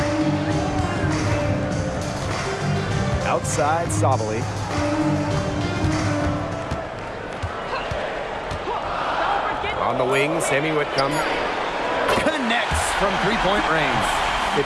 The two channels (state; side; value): identical; both; correlation 1.00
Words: Outside Sabali. On the wing, Sammy Whitcomb connects from three-point range. If